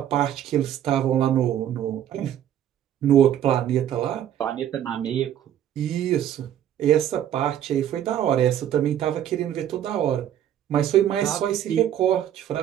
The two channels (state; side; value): quieter; left; 10.6 dB